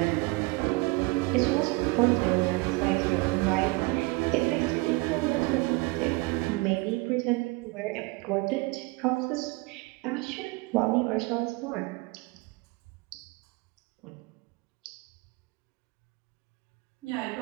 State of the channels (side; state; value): left; quieter; 25.1 dB